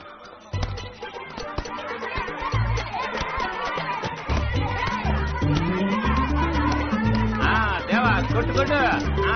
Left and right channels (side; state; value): both; identical; correlation 1.00